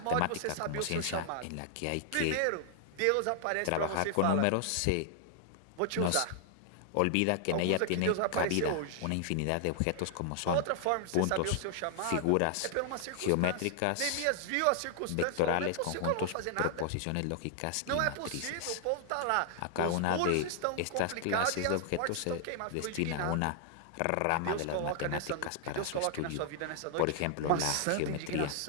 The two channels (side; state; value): both; different; correlation 0.00